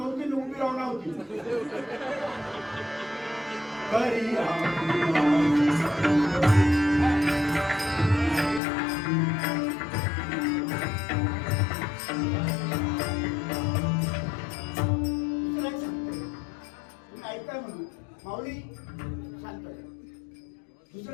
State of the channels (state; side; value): drops out; right; at 8.6 s